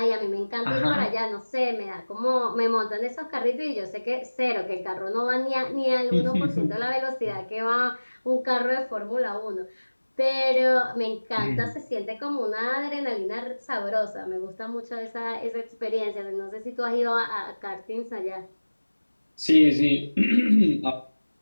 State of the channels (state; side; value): inverted; both; correlation -1.00